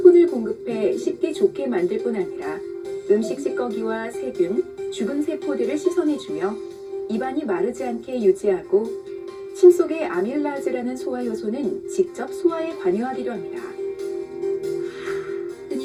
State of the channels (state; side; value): identical; both; correlation 1.00